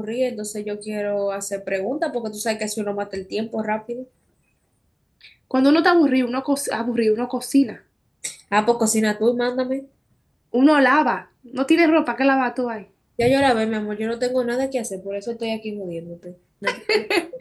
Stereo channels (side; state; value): both; identical; correlation 1.00